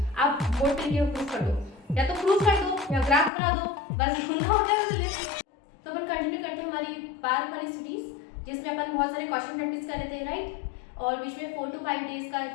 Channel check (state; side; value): drops out; right; at 3.3 s